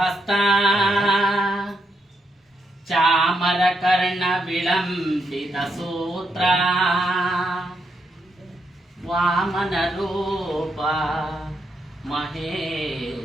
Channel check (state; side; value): normal; both; correlation 0.80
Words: ಚಾಮರ ಕರ್ಣ ವಿಳಂಬಿತ ಸೂತ್ರ ವಾಮನ ರೂಪ